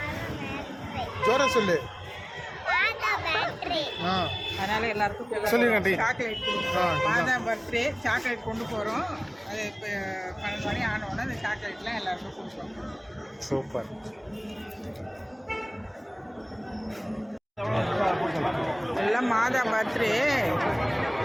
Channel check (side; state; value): both; identical; correlation 1.00